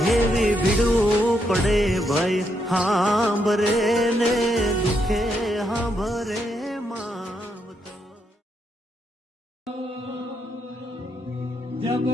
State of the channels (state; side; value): normal; both; correlation 0.79